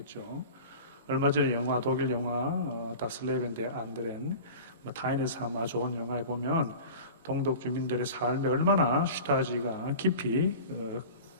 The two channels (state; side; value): inverted; both; correlation -0.36